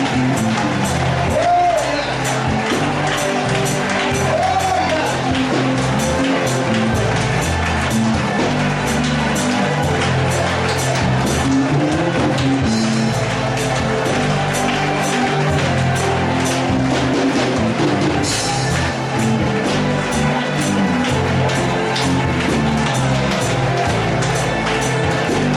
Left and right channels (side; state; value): both; identical; correlation 1.00